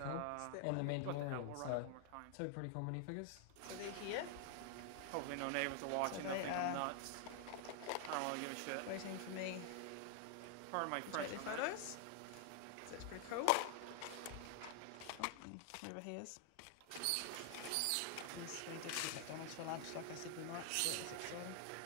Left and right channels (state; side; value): different; both; correlation 0.00